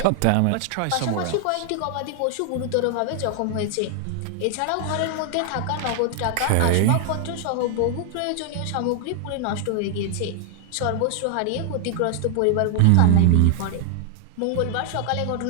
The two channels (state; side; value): different; both; correlation 0.00